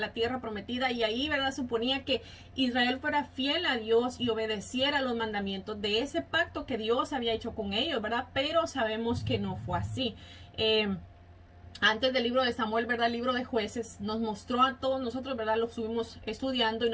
tierra prometida, y ahí, ¿verdad?, suponía que Israel fuera fiel a Dios y obedeciera los mandamientos de ese pacto que Dios había hecho con ellos, ¿verdad? Pero sabemos que no fue así. Antes del libro de Samuel, ¿verdad?, el libro de Jueces nos mostró a todos nosotros, ¿verdad?, lo estuvimos estudiando, y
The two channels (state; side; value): identical; both; correlation 1.00